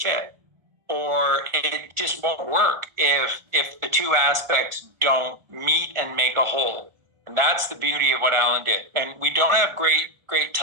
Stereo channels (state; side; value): late; left; 1.8 ms